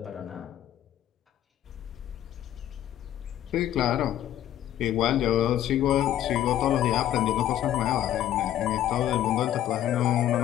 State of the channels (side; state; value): right; quieter; 11.9 dB